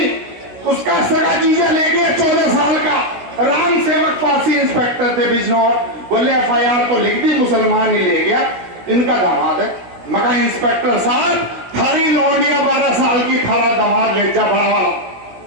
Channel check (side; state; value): left; late; 16 ms